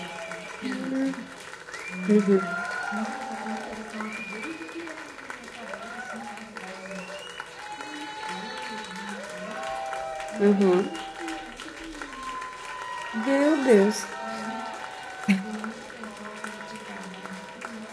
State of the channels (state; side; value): identical; both; correlation 1.00